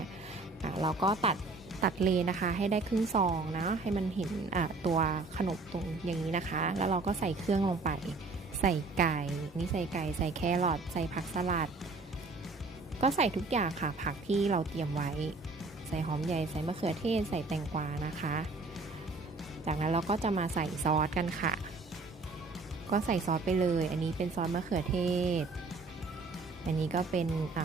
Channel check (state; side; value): quieter; left; 3.7 dB